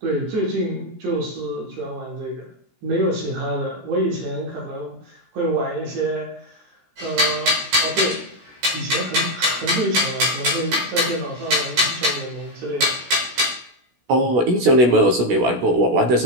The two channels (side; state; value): left; late; 16 ms